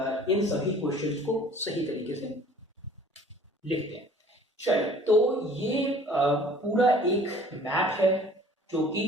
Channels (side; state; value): both; normal; correlation 0.50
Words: इन सभी क्वेश्चंस को सही तरीके से लिखते हैं। चलिए, तो ये पूरा एक मैप है जो कि